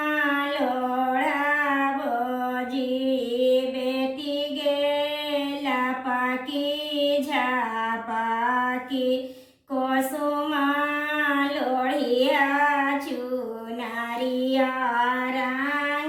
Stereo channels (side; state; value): both; identical; correlation 1.00